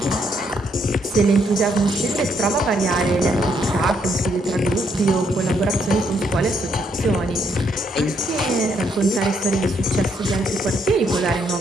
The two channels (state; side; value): normal; both; correlation 0.73